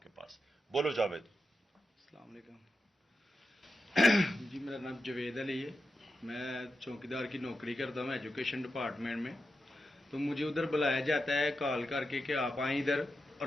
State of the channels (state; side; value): normal; both; correlation 0.89